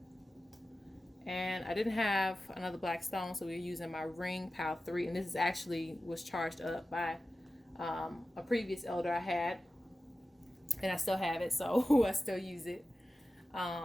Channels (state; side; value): normal; both; correlation 0.94